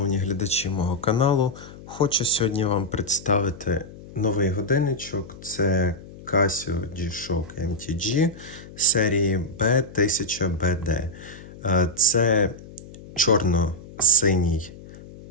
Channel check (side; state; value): left; noise; hum, 17 dB below the sound